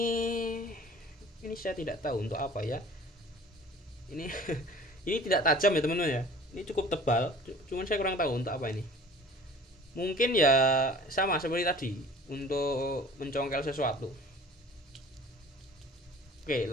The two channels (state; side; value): normal; both; correlation 0.46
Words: saya tidak tahu untuk apa ya. Ini ini tidak tajam ya teman-teman ya. Ini cukup tebal, cuman saya kurang tahu untuk apa ini. Mungkin ya sama seperti tadi untuk mencongkel sesuatu. Oke,